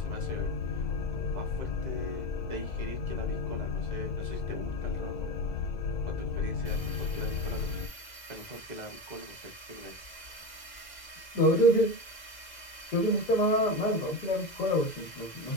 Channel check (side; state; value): right; late; 2.0 ms